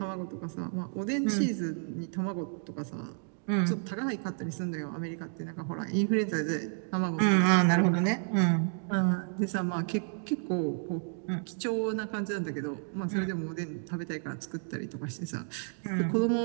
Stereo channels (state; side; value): silent; left; 57 dB below the other